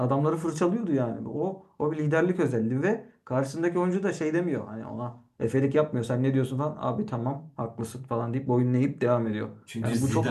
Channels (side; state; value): both; identical; correlation 1.00